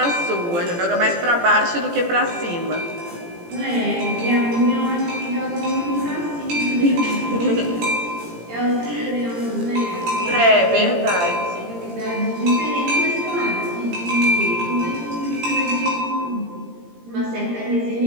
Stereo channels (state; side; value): late; left; 17 ms